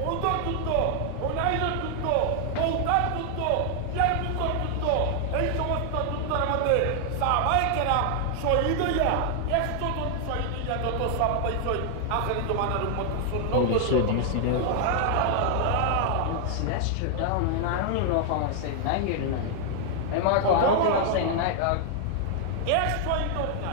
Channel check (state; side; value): different; both; correlation 0.00